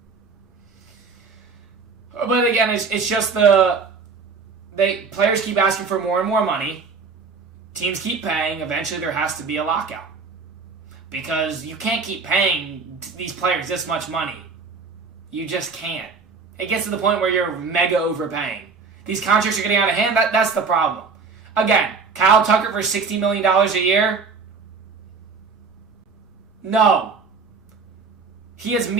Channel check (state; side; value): quieter; left; 4.9 dB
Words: But again, it's just players keep asking for more and more money. Teams keep paying. Eventually, there has to be a lockout. Because you can't keep paying these players this much money. You just can't. It gets to the point where you're mega overpaying. These contracts are getting out of hand. That's the problem. Again, Kyle Tucker for $60 million a year? No. He has